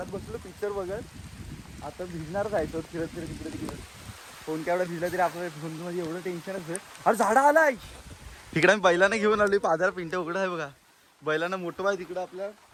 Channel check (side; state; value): both; identical; correlation 1.00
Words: बसलो पिक्चर बघत. आता भिजणार जायचं फिरत फिरत इकडे तिकडे. फोन केवढा भिजला तरी आपल्याला फोनमध्ये एवढं टेन्शनच आहे. अरे झाडं आलाय इकडे. आम्ही बैलांना घेऊन आलोय. पाजारा पिंट्या उघडं आहे बघा. बैलांना मोठं बाय तिकडं आपल्या